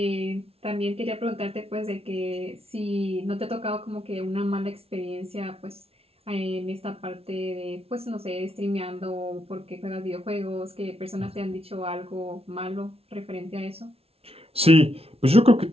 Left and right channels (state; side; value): late; left; 0.29 ms